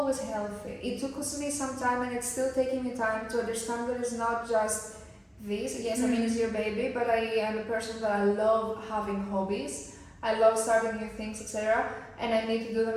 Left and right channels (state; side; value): identical; both; correlation 1.00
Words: healthy. It took me some time, and it's still taking me time to understand that it's not just this. Yes, I mean, it's your baby, but I am a person that I love having hobbies. I love starting new things, etc. And I need to do